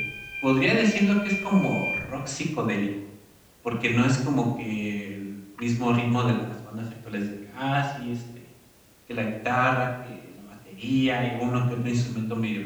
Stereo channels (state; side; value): identical; both; correlation 1.00